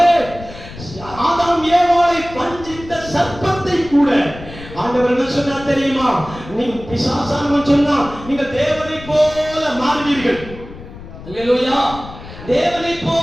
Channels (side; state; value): left; noise; rumble, 15 dB below the sound